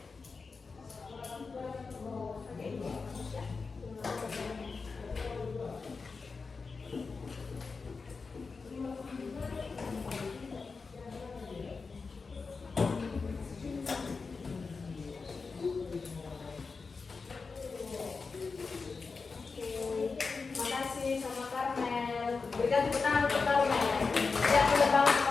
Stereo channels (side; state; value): right; quieter; 4.6 dB